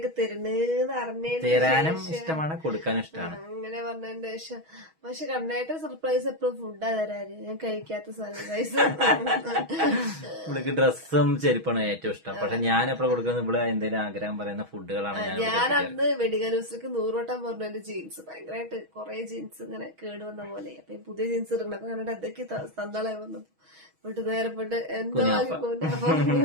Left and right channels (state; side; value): late; left; 6.2 ms